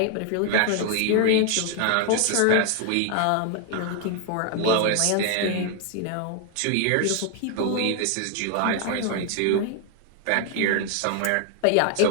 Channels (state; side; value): different; both; correlation 0.00